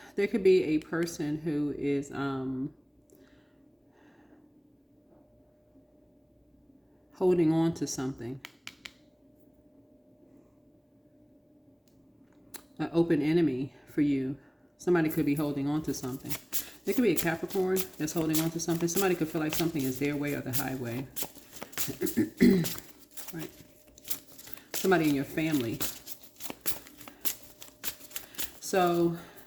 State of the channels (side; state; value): both; identical; correlation 1.00